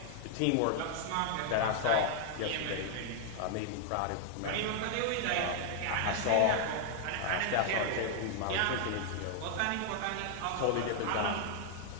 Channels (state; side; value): different; both; correlation 0.00